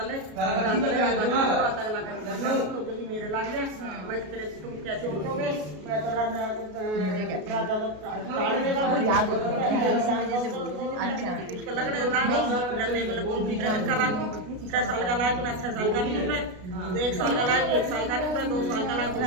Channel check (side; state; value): left; late; 33 ms